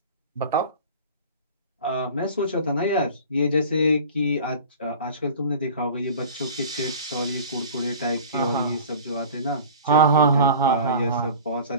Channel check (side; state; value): both; inverted; correlation -0.40